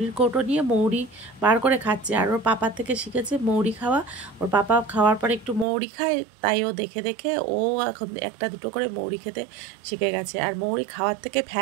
কৌটো নিয়ে মৌরি বার করে খাচ্ছে, আর ওর পাপার থেকে শিখেছে মৌরি খাওয়া। ওর পাপা খাওয়ার পরে একটু মৌরি খায়, তাই ও দেখে দেখে ও এখন একটা দুটো করে মৌরি খেতে শিখে গেছে। আর মৌরি খাওয়ার থেকে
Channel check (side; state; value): left; drops out; at 5.7 s